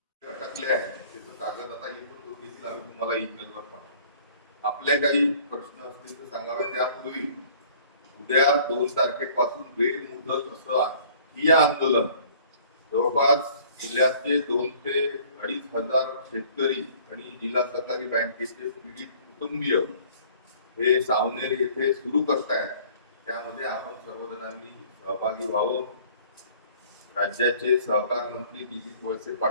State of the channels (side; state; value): both; inverted; correlation -0.53